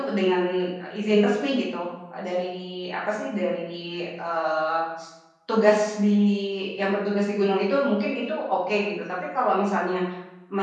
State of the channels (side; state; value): both; identical; correlation 1.00